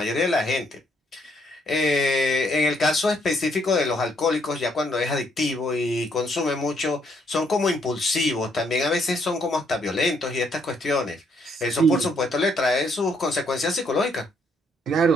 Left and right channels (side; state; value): both; normal; correlation 0.71